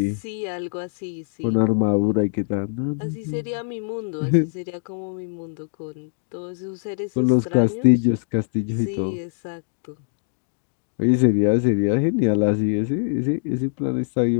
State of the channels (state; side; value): silent; right; digital silence